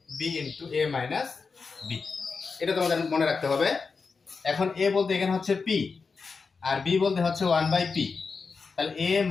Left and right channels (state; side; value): quieter; right; 4.8 dB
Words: into a minus b। এটা তোমাদের মনে রাখতে হবে। এখন a বলতে এখানে হচ্ছে p আর b বলতে হচ্ছে 1/p, তাহলে a